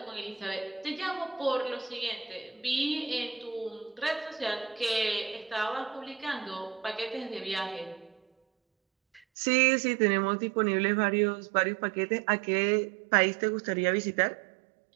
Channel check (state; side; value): drops out; left; at 9.2 s